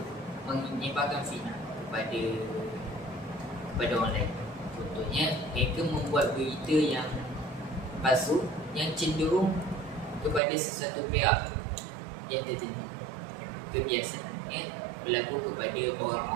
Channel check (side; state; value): left; drops out; at 10.4 s